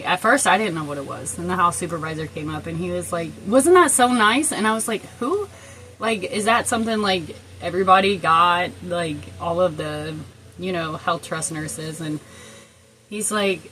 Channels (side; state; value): both; identical; correlation 1.00